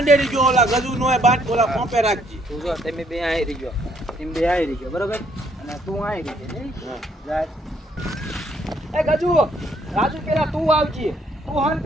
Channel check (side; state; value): both; normal; correlation 0.68